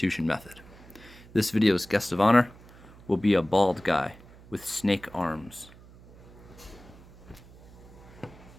method. This video's guest of honor will be a bald guy with snake arms.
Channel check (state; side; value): noise; right; hum, 21 dB below the sound